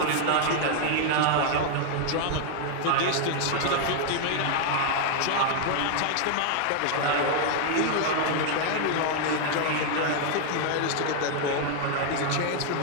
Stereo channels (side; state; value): both; different; correlation 0.00